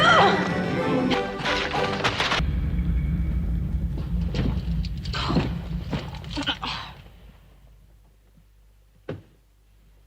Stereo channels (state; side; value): identical; both; correlation 1.00